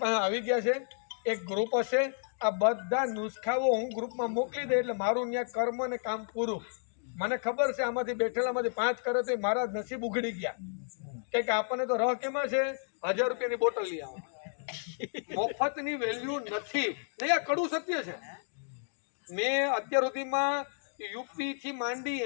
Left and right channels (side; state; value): right; silent; digital silence